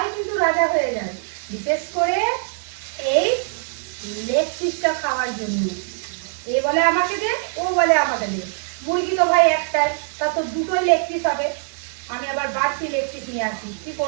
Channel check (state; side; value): silent; left; digital silence